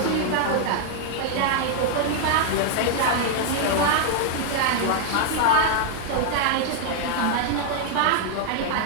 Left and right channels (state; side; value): different; both; correlation 0.00